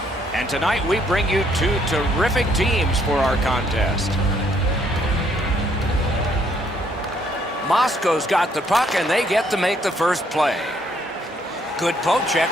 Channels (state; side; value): normal; both; correlation 0.68